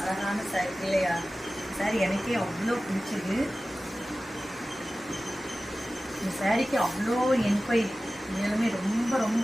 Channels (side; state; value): both; normal; correlation 0.96